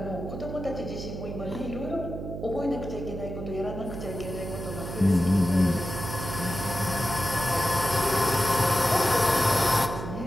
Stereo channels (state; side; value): noise; right; hum, 7 dB below the sound